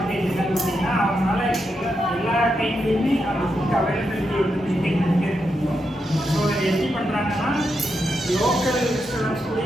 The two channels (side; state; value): both; normal; correlation 0.84